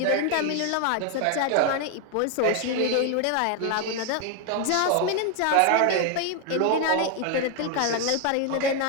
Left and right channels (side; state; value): both; different; correlation 0.01